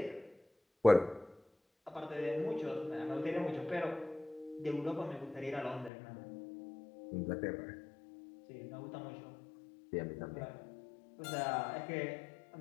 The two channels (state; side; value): drops out; right; at 5.9 s